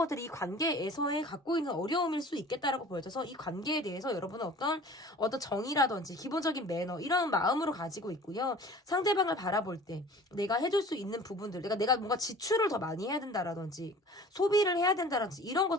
이 관계에서의 갖고 있는 어려움일 수 있겠다라고 보여져서 이 관계에 대해서 여러분은 어떤 정의라든지 기본적인 매너 이런 마음으로 가지고 있고요. 상대방을 바라볼 때 내가 해줄 수 있는 부분들, 내가 뭔가 지출을 더 많이 해야 된다라든지 소비를 해야 된다라든지 이런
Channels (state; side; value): normal; both; correlation 0.44